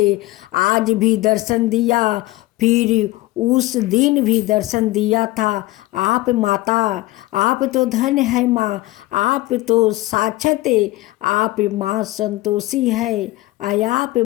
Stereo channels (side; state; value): right; quieter; 18.8 dB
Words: आज भी दर्शन दिया, फिर उस दिन भी दर्शन दिया था। आप माता, आप तो धन है माँ, आप तो साक्षात आप माँ संतोषी है। आप